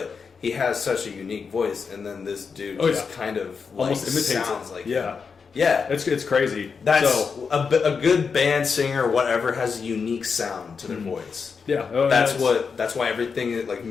he has such a unique voice. And then this dude kind of like almost imitates sounds it. like yeah. him. Yeah, it's crazy. That's a good band singer, whatever, has a unique sound to their voice. Yeah, that's why everything like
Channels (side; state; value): right; quieter; 5.6 dB